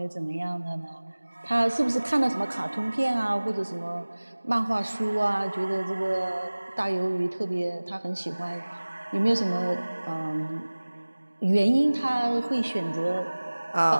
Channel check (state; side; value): inverted; both; correlation -1.00